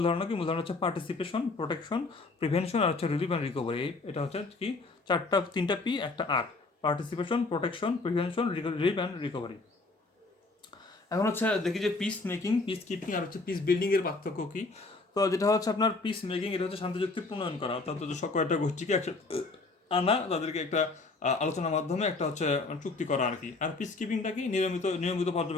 ধারণা কি, মূল ধারণা হচ্ছে পার্টিসিপেশন, প্রোটেকশন, প্রিভেনশন আর হচ্ছে রিলিফ অ্যান্ড রিকভারি। এটা হচ্ছে কি তিনটা পি একটা R, participation, protection, prevention, relief and recovery. এখন হচ্ছে দেখি যে পিস মেকিং, পিস কিপিং আর হচ্ছে পিস বিল্ডিং এর পার্থক্য কি। তো যেটা হচ্ছে আপনার পিস মেকিং, এটা হচ্ছে শান্তি চুক্তি প্রণয়ন করা, অর্থাৎ কয়েকটা গোষ্ঠীকে একসাথে আনা, তাদেরকে একটা আলোচনার মাধ্যমে একটা হচ্ছে চুক্তি করা আর কি। আর পিস কিপিংটা কি, নিয়মিত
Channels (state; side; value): quieter; right; 3.6 dB